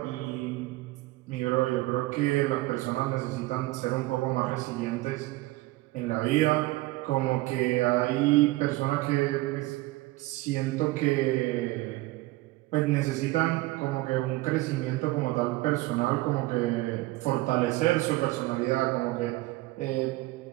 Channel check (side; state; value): left; quieter; 19.6 dB